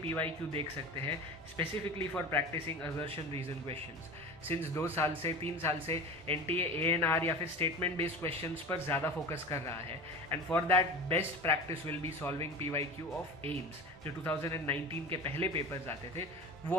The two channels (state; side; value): normal; both; correlation 0.33